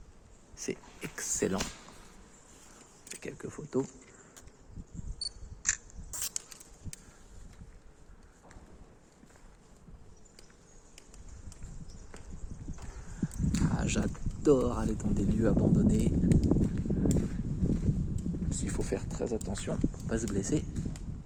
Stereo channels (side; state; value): both; identical; correlation 1.00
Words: c'est excellent, quelques photos. Ah, j'adore aller dans des lieux abandonnés. Il faut faire très attention pour ne pas se blesser.